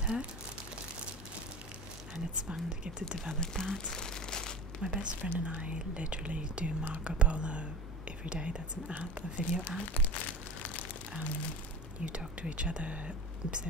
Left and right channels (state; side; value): normal; both; correlation 0.34